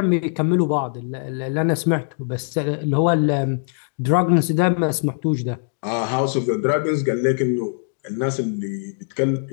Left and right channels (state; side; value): silent; right; digital silence